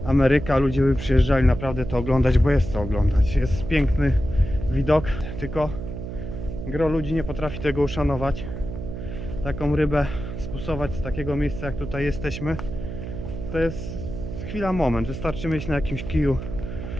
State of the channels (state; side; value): noise; right; hum, 7 dB below the sound